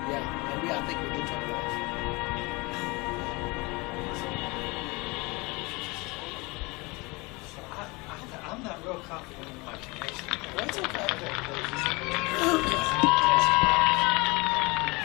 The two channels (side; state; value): right; quieter; 25.6 dB